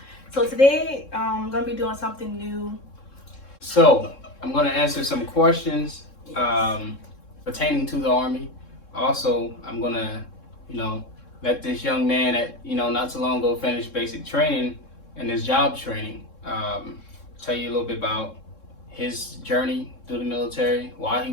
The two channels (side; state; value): right; late; 3.7 ms